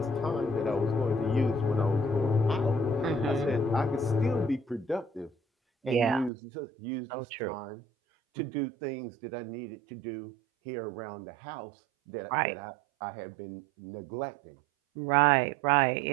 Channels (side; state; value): left; drops out; at 6.3 s